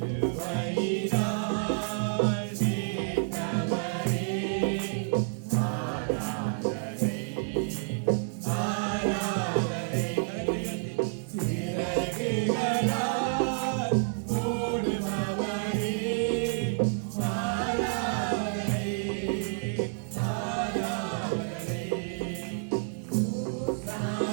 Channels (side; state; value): left; silent; digital silence